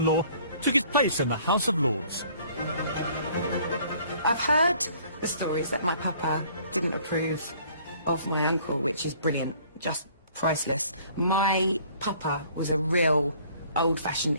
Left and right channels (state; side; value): inverted; both; correlation -0.56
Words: took his place in the House of Lords. I've heard the stories that my papa didn't approve of my uncle, which is brilliant, just priceless. My papa was a real